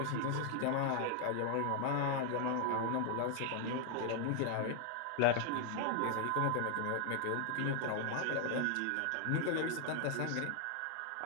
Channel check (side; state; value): both; different; correlation 0.00